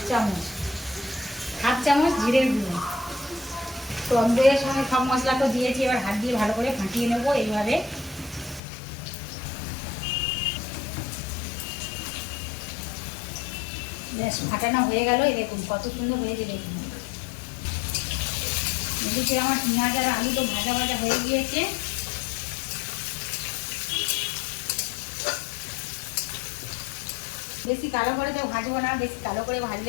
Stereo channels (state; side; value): drops out; right; at 8.6 s